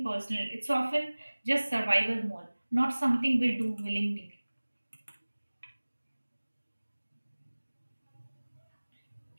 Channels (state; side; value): inverted; both; correlation -1.00